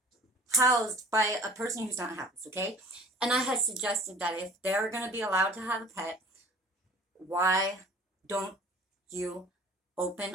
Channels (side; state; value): both; normal; correlation 0.46